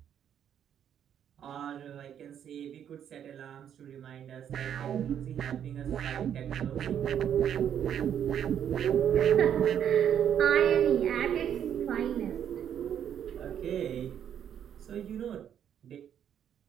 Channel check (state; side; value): quieter; left; 9.3 dB